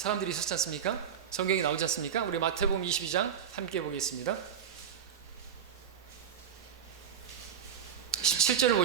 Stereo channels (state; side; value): quieter; left; 8.2 dB